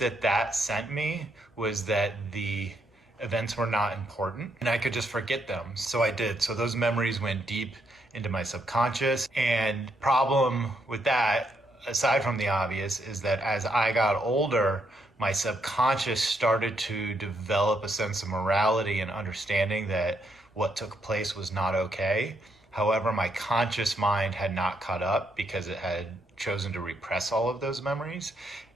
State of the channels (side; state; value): both; normal; correlation 0.76